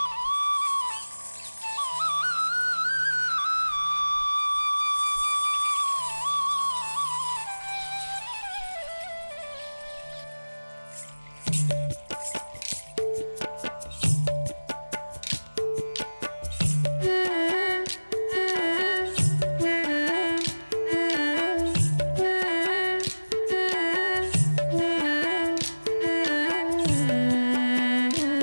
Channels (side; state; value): both; inverted; correlation -1.00